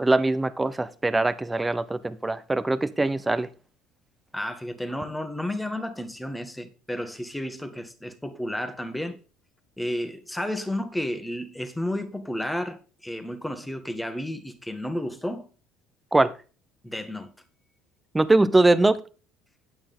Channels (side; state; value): both; normal; correlation 0.97